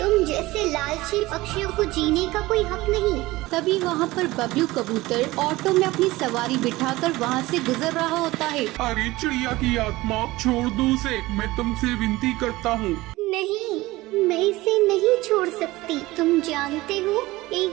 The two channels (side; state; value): left; quieter; 19.2 dB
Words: जैसे लालची पक्षियों को जीने का कोई हक नहीं। तभी वहाँ पर बबलू कबूतर ऑटो में अपनी सवारी बिठाकर वहाँ से गुजर रहा होता है। अरे चिड़िया की आत्मा, छोड़ दो उसे, मैं तुमसे विनती करता हूँ। नहीं, मैं इसे नहीं छोड़ सकती। तुम जानते हो,